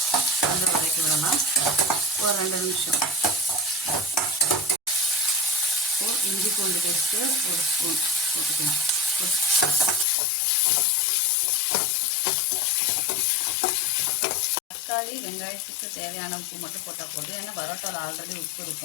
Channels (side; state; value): right; drops out; at 10.1 s